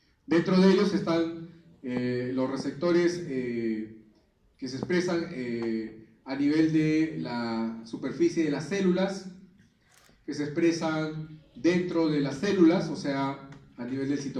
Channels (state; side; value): identical; both; correlation 1.00